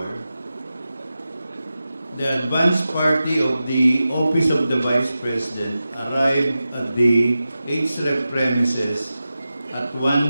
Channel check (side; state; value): both; inverted; correlation -0.93